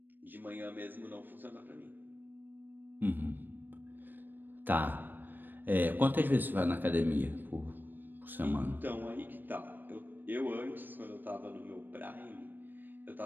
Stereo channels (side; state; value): left; late; 0.092 ms